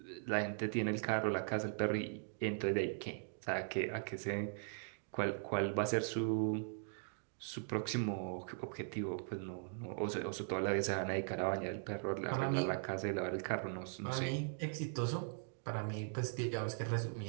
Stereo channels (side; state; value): left; silent; digital silence